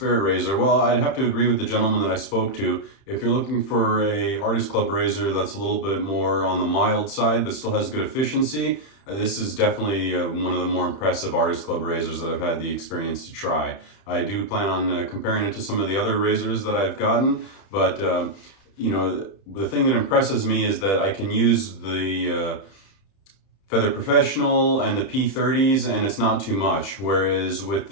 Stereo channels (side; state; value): right; late; 31 ms